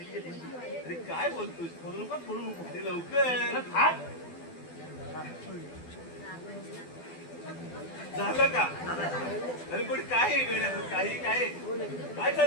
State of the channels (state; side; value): late; right; 12 ms